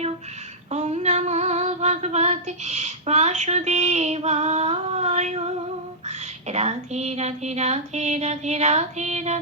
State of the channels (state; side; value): normal; both; correlation -0.13